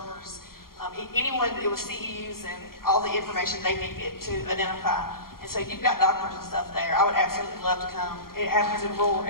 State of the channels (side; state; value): right; late; 0.92 ms